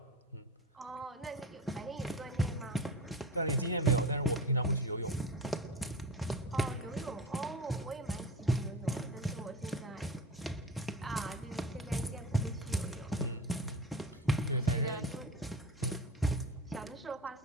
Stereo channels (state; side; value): normal; both; correlation 0.30